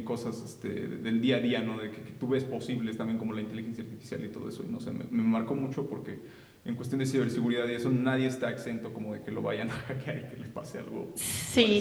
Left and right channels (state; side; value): identical; both; correlation 1.00